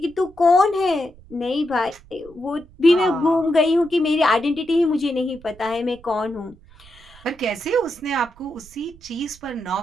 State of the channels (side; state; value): right; noise; rumble, 24 dB below the sound